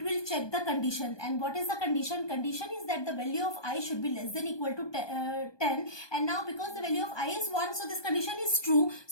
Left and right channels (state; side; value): late; right; 1.2 ms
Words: will check the condition. And what is the condition? Condition is that the value of I should be less than equal to 10. And now because the value of I is 1, so this condition is true.